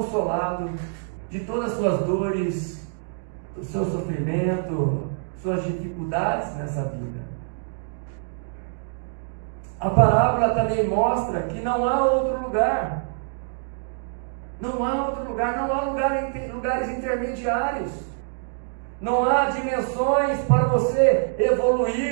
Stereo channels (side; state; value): left; silent; digital silence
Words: de todas as suas dores, o seu sofrimento, suas dificuldades nessa vida. A parábola também mostra que não há outro lugar. Não há outro lugar, não há lugares intermediários. Não há dimensões para você